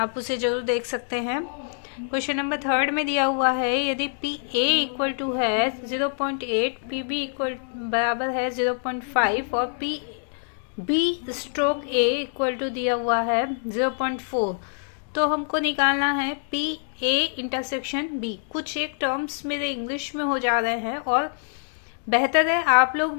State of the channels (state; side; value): silent; right; digital silence